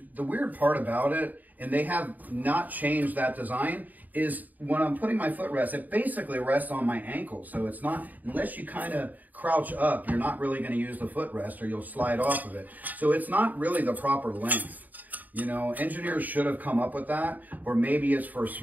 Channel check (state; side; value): late; left; 0.082 ms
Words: the weird part about it, and they have not changed that design, is when I'm putting my footrest, it basically rests on my ankle. So it's not, unless you kind of crouch up, you're not really going to use the footrest or you'll slide off of it. So it's not really the proper length. You know, engineers should have come up with that, or maybe it's for